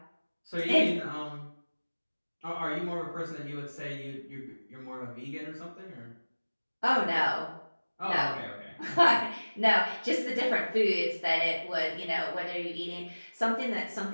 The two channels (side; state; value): both; inverted; correlation -1.00